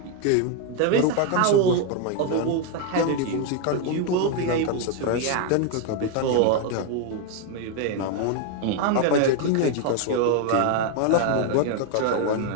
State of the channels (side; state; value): both; different; correlation 0.01